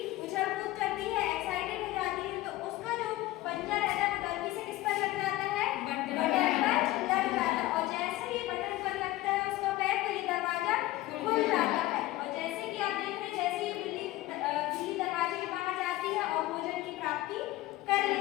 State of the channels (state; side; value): quieter; right; 16.9 dB